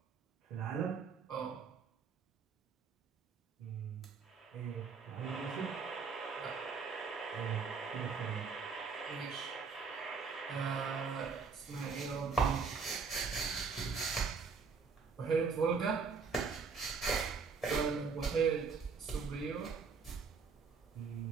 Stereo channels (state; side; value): quieter; left; 5.3 dB